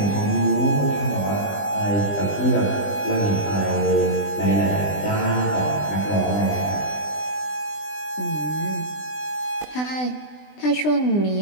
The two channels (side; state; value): right; late; 20 ms